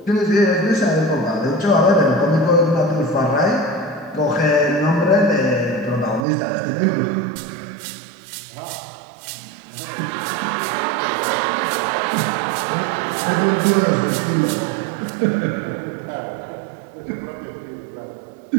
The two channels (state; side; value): drops out; left; at 6.2 s